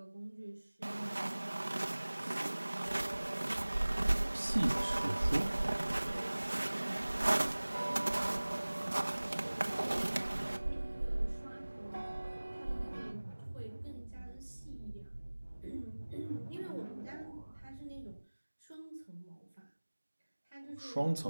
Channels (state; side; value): inverted; both; correlation -1.00